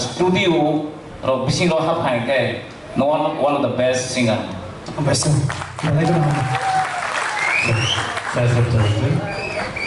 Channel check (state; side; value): identical; both; correlation 1.00